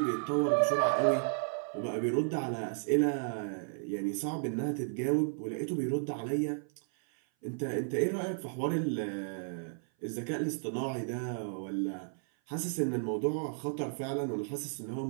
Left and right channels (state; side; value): silent; left; 55 dB below the other